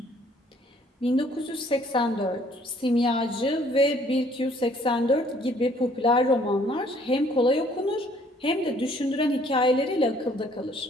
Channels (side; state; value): both; normal; correlation 0.60